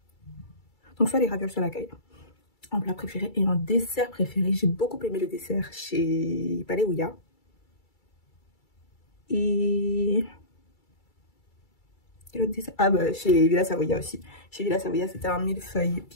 Donc, soit les ravioles, soit la caille. En plat préféré. Et en dessert préféré, j'ai beaucoup aimé le dessert chez Palais Ouya. Et l'autre dessert, chez Villa Savoia aussi. Chez Villa Savoia, c'était un millefeuille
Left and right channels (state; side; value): late; right; 2.3 ms